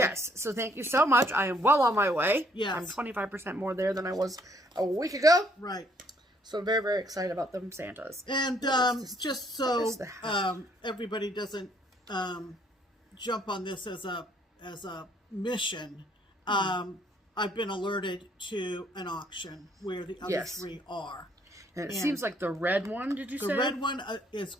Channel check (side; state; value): both; normal; correlation 0.66